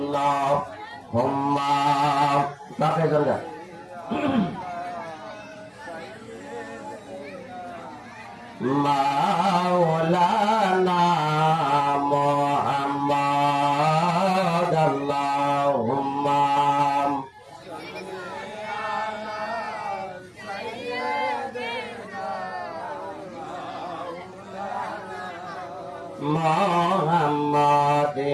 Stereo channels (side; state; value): both; identical; correlation 1.00